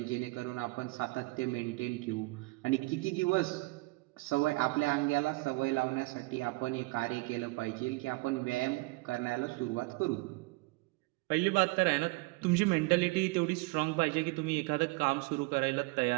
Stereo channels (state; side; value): quieter; left; 24.5 dB